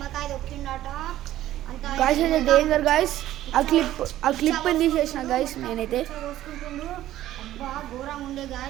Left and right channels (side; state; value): left; quieter; 13.6 dB